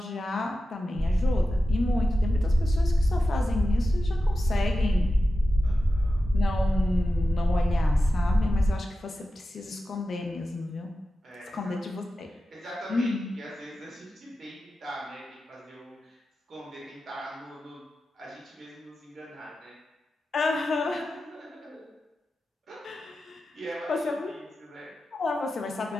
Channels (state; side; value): normal; both; correlation 0.93